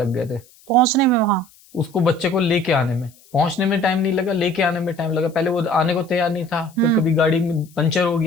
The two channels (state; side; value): noise; left; hiss, 28 dB below the sound